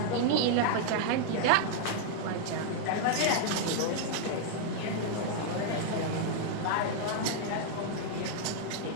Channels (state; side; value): different; both; correlation -0.01